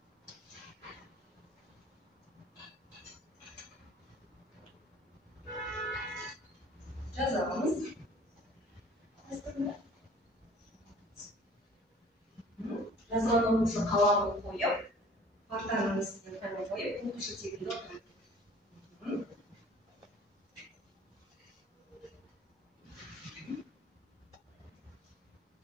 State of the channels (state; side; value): normal; both; correlation 0.50